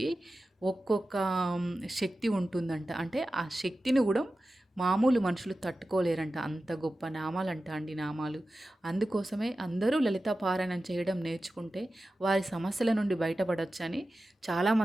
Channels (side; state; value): both; normal; correlation 0.94